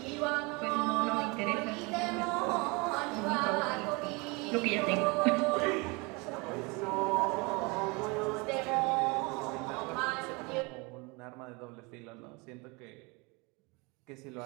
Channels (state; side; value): quieter; left; 27.9 dB